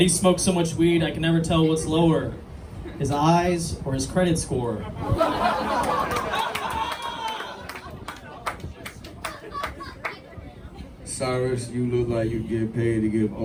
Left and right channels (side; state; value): both; identical; correlation 1.00